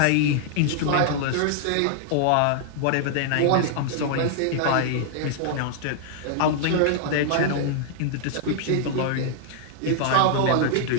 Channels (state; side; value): different; both; correlation -0.01